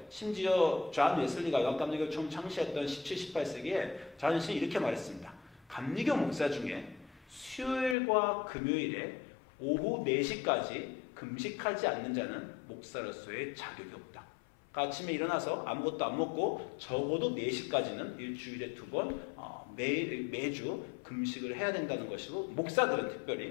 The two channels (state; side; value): drops out; right; at 8.0 s